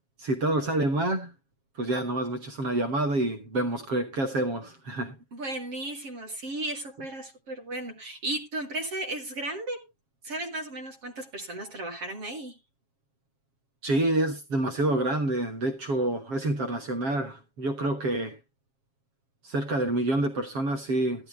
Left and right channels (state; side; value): late; left; 7.4 ms